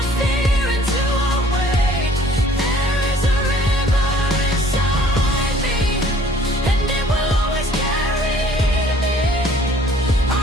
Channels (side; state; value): both; normal; correlation 0.56